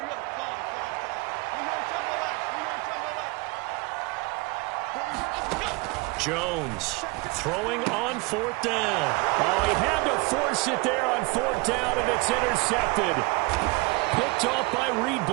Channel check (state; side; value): quieter; left; 26.5 dB